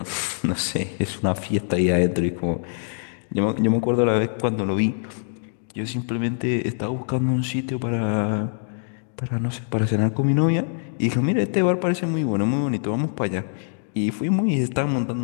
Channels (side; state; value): right; silent; digital silence